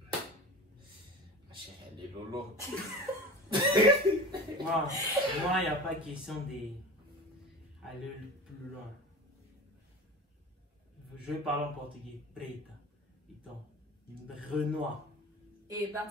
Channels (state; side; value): normal; both; correlation 0.34